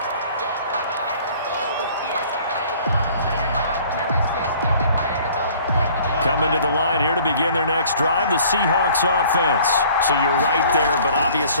Coming to the line here to begin their next drive, the Seahawks offense. So you're right there, but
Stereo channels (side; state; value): both; inverted; correlation -0.53